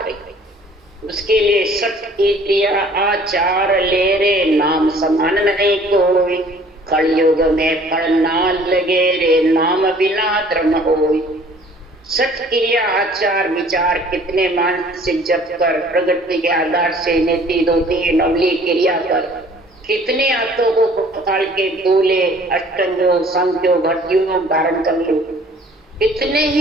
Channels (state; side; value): normal; both; correlation 0.54